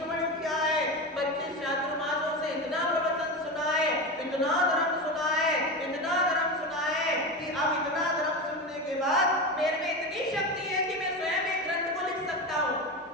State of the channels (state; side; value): normal; both; correlation 0.21